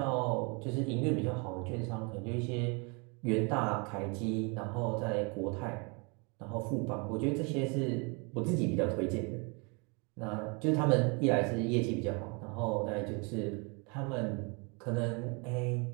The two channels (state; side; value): quieter; left; 32.2 dB